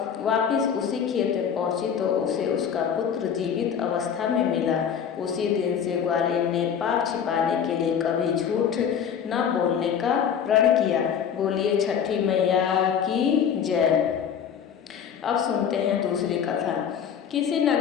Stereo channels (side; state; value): right; quieter; 7.9 dB